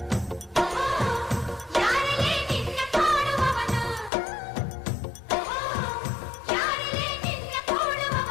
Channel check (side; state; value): right; drops out; at 4.1 s